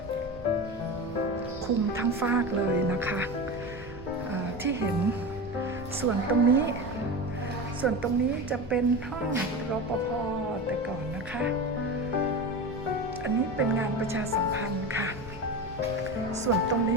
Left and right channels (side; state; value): both; normal; correlation 0.25